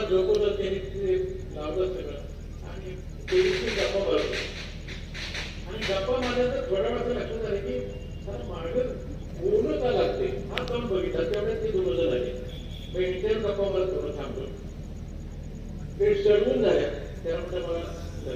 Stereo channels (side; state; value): both; identical; correlation 1.00